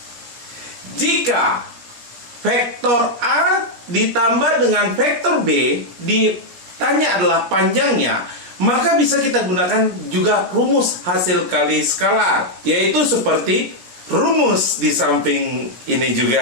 Jika vektor A ditambah dengan vektor B ditanya adalah panjangnya, maka bisa kita gunakan juga rumus hasil kali skalar, yaitu seperti rumus di samping ini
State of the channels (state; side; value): late; left; 17 ms